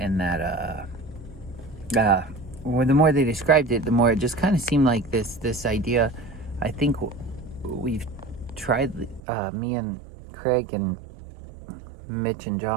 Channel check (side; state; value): left; drops out; at 9.2 s